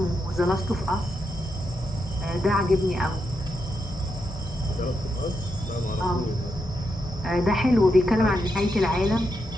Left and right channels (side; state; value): both; normal; correlation 0.84